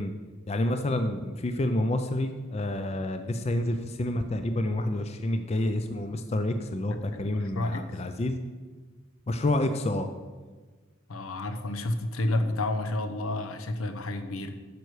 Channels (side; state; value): both; normal; correlation 0.74